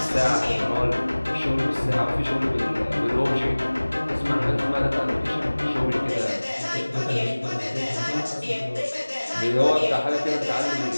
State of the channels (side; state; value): both; inverted; correlation -1.00